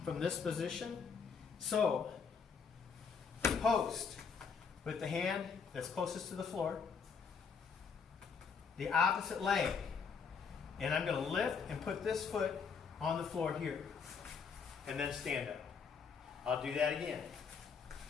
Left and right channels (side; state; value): right; quieter; 5.8 dB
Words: from this position. So, post with the hand that's closest to the floor, the opposite leg, and I'm going to lift and put this foot on the floor here, and then stand up. I'll do that again.